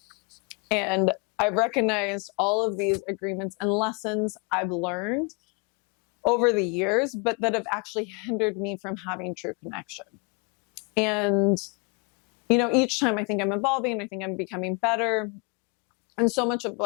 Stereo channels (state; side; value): quieter; right; 32.9 dB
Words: and I've recognized all of these agreements and lessons I've learned over the years, but that have actually hindered me from having true connection. And, each time I think I'm evolving, I think I'm becoming better. And so much of